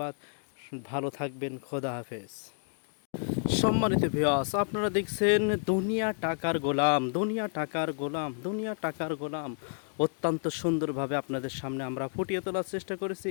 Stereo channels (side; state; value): right; silent; digital silence